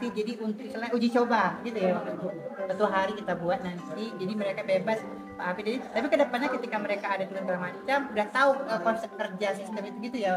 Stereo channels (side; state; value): both; identical; correlation 1.00